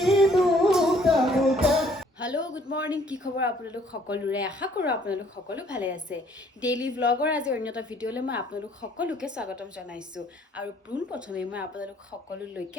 হেল্ল' গুড মৰ্ণিং কি খবৰ আপোনালোক সকলোৰে আশা কৰোঁ আপোনালোক সকলো ভালে আছে ডেইলি ব্লগৰ আজি অন্য এটা ভিডিঅ'লৈ মই আপোনালোক সকলোকে স্বাগতম জনাইছোঁ আৰু পোনপ্ৰথমে মই আপোনালোক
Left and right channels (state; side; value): normal; both; correlation 0.61